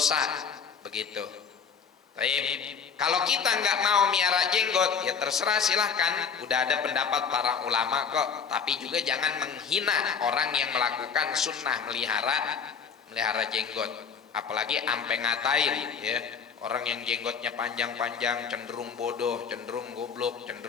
begitu. Kalau kita nggak mau miara jenggot, ya terserah, silahkan. Udah ada pendapat para ulama kok. Tapi juga jangan menghina orang yang melakukan sunnah melihara jenggot. Apalagi ampe ngatain, ya, orang yang jenggotnya panjang-panjang cenderung bodoh, cenderung goblok,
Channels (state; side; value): quieter; right; 6.4 dB